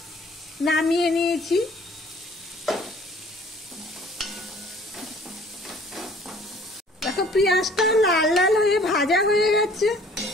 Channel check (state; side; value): normal; both; correlation 0.54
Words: নামিয়ে নিয়েছি। দেখো পেঁয়াজটা লাল লাল হয়ে ভাজা হয়ে গেছে।